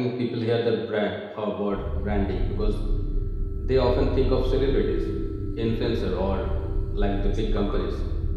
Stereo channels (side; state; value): both; identical; correlation 1.00